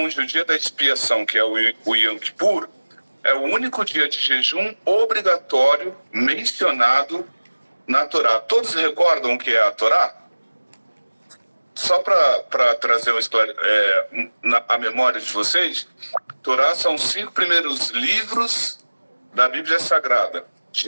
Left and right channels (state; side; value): inverted; both; correlation -1.00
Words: o dia da expiação, que é o Yom Kippur, é o único dia de jejum obrigatório mencionado na Torá. Todos recordam o que é a Torá? Só para trazer a memória de vocês, Torá são os 5 primeiros livros da Bíblia Sagrada: